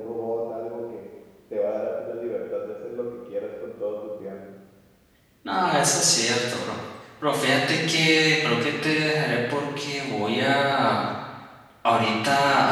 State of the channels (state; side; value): identical; both; correlation 1.00